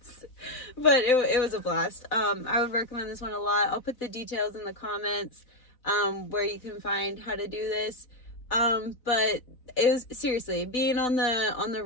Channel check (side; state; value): right; late; 4.0 ms